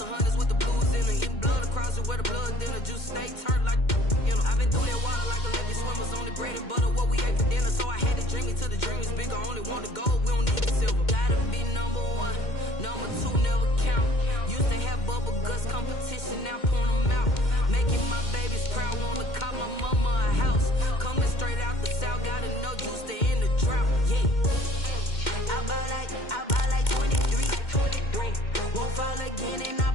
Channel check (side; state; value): right; late; 2.1 ms